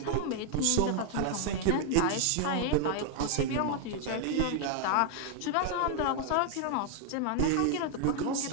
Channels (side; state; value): both; different; correlation 0.00